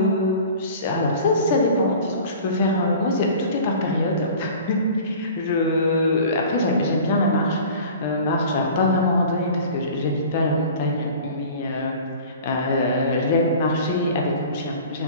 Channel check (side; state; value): both; inverted; correlation -0.42